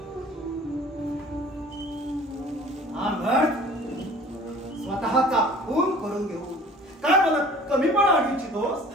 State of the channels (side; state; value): both; normal; correlation 0.48